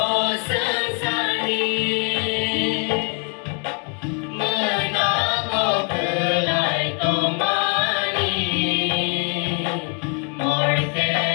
sensari Menako belai tomani Morke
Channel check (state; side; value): quieter; right; 39.2 dB